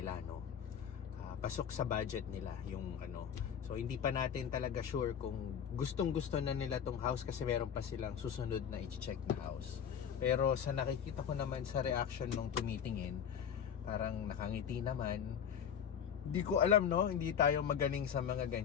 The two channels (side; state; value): right; quieter; 8.1 dB